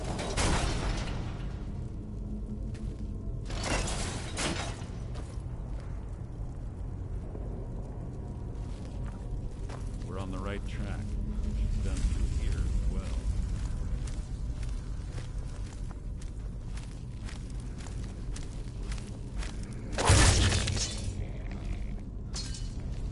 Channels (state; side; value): identical; both; correlation 1.00